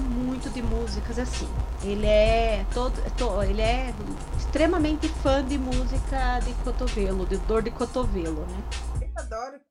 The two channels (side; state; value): both; identical; correlation 1.00